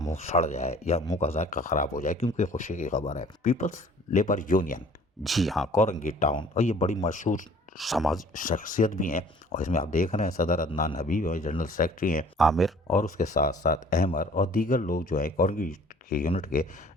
سڑ جائے یا منہ کا ذائقہ خراب ہو جائے، کیونکہ خوشی کی خبر ہے۔ پیپلز لیبر یونین، جی ہاں، کورنگی ٹاؤن، اور یہ بڑی مشہور سماجی شخصیت بھی ہیں، اور اس میں آپ دیکھ رہے ہیں صدر عدنان حبیب اور جنرل سیکرٹری ہیں عامر، اور اس کے ساتھ ساتھ احمر اور دیگر لوگ جو ہیں کورنگی کے یونٹ کے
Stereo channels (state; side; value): normal; both; correlation 0.52